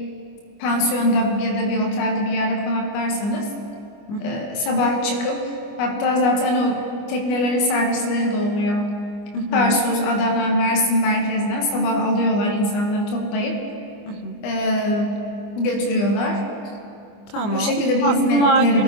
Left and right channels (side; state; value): right; late; 24 ms